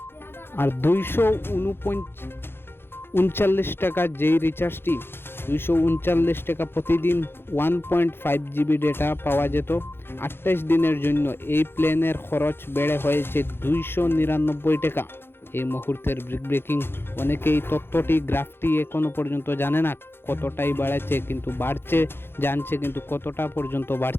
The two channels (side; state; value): right; late; 0.11 ms